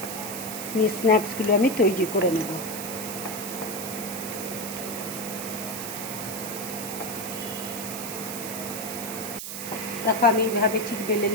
নিয়ে স্ন্যাক্সগুলো আমি তৈরি করে নেব। দেখো আমি এইভাবে ঠিক বেলে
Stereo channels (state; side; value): noise; right; hiss, 7 dB below the sound